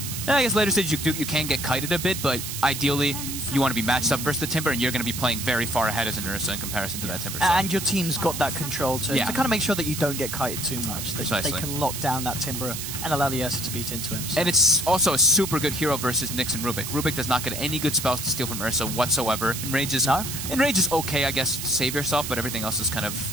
I guess later stages you can get kited a bit, but ideally you want to be matched up versus the Timber, and you're going to be playing very far ahead as an Ursa in comparison to that Timber. So. And your team's got that control to kind of make sure that you don't get kited too much. They can lock down that Timber and allow the Ursa to beat into him. So. And it's also a super good hero versus Nyx and Rubik. Rubik does not get any good spells to steal from Ursa whatsoever. Enrage is okay, I guess, to save yourself, but everything else is kind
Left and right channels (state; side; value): noise; right; hiss, 6 dB below the sound